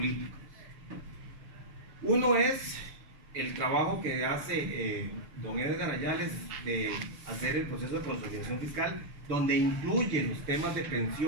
Uno es el trabajo que hace don Edgar Ayales de hacer el proceso de consolidación fiscal, donde incluye los temas de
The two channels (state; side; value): late; left; 6.7 ms